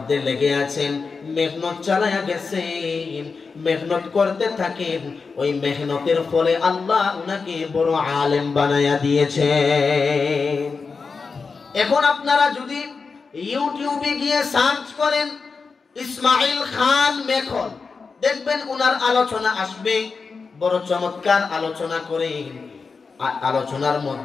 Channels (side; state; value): right; quieter; 4.8 dB